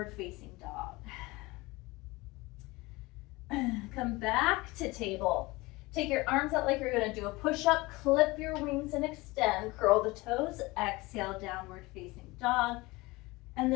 facing dog. Come back to table. Take your arms out like you're going to do a push-up. Clip your wings and extend. Curl the toes. Exhale, downward facing dog. And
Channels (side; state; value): right; quieter; 22.2 dB